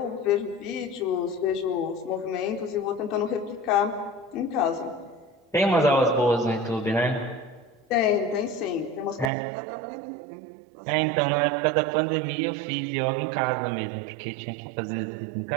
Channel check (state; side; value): drops out; left; at 9.3 s